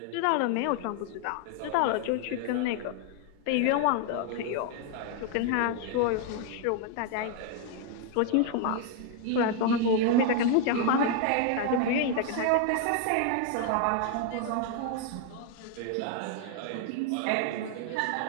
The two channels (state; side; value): different; both; correlation 0.00